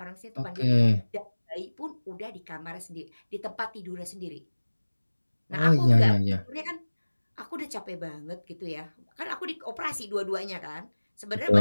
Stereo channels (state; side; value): inverted; both; correlation -1.00